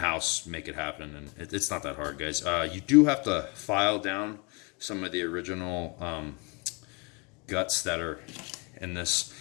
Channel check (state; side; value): quieter; right; 31.1 dB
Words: make it happen. And it's not that hard, guys. You do have to file down some of the original guts that are in this